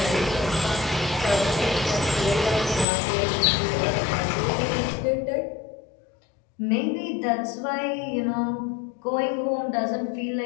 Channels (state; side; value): drops out; right; at 2.9 s